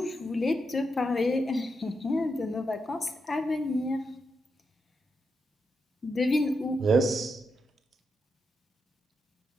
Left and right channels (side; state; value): both; normal; correlation 0.84